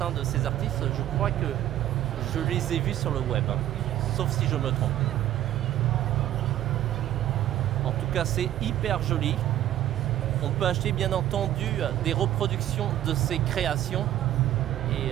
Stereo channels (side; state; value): left; quieter; 12.8 dB